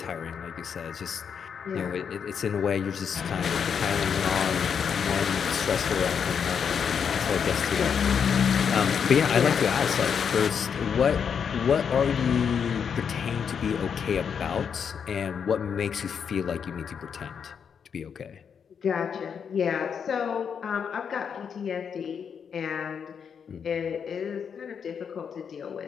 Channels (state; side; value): quieter; right; 7.0 dB